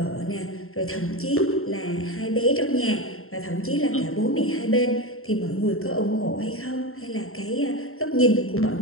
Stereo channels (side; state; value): right; late; 0.62 ms